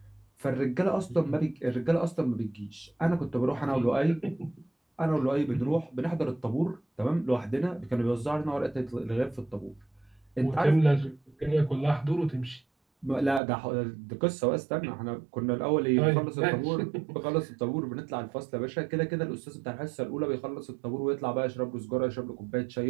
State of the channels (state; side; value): drops out; left; at 13.4 s